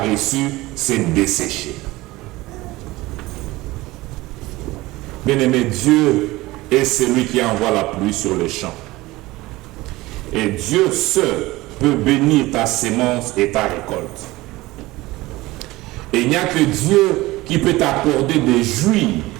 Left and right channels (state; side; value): quieter; left; 19.4 dB